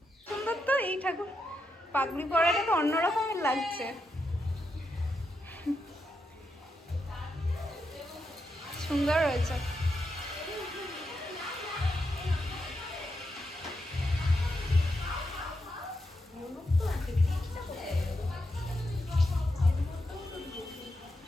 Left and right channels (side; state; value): both; normal; correlation 0.84